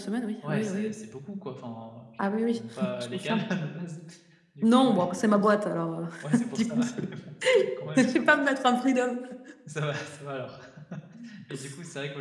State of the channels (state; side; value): identical; both; correlation 1.00